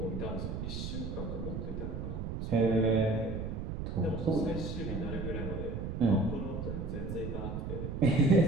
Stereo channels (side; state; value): right; noise; rumble, 4 dB below the sound